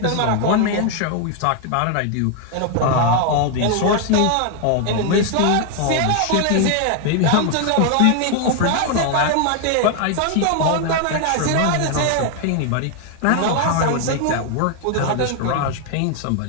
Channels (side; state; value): both; different; correlation 0.00